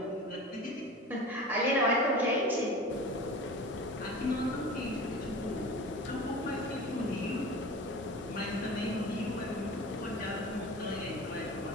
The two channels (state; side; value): normal; both; correlation 0.35